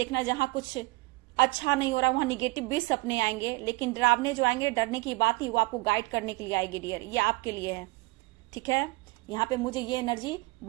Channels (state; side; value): quieter; left; 23.1 dB